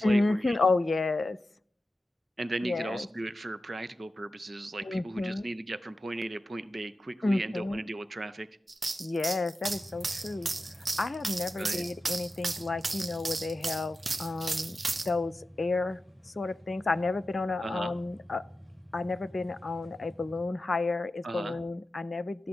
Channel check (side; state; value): both; normal; correlation 0.93